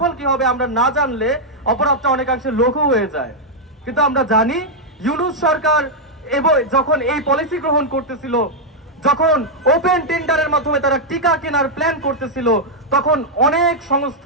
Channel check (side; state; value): both; normal; correlation -0.03